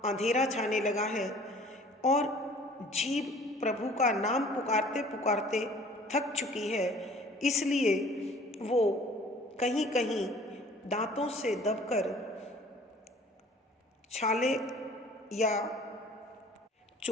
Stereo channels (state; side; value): normal; both; correlation 0.51